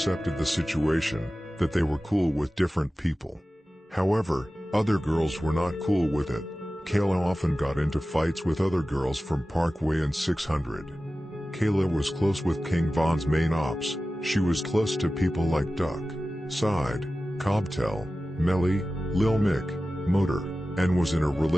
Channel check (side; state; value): both; normal; correlation 0.95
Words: the situation, that they were cool with different people. However, other girls were not cool with it. Kayla often got into fights with other girls from Parkway and 600. Kayla was close with King Von's main ops. She was close to people like Duck, Side, Cobtel, Melly, Lil Mick, Motor, and was in a